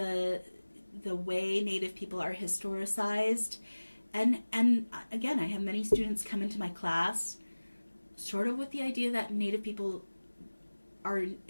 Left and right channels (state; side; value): inverted; both; correlation -1.00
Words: way Native people are historicized, and again, I have many students come into my class sort of with the idea that Native people are